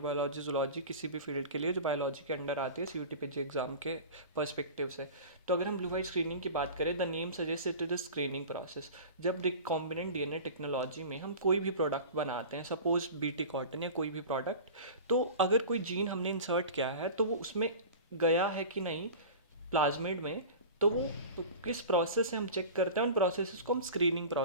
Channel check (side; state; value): both; inverted; correlation -0.35